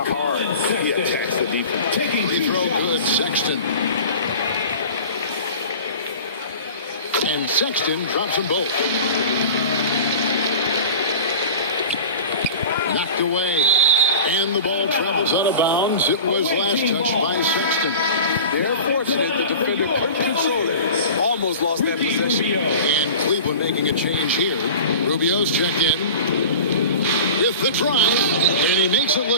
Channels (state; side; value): inverted; both; correlation -0.37